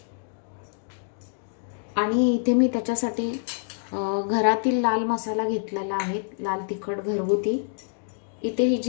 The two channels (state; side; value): silent; right; digital silence